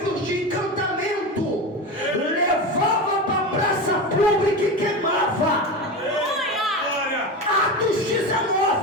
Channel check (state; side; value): normal; both; correlation 0.23